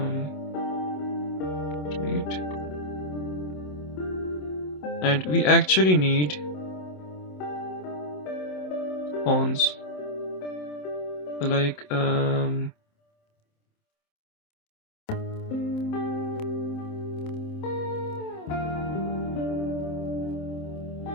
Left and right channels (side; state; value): right; late; 27 ms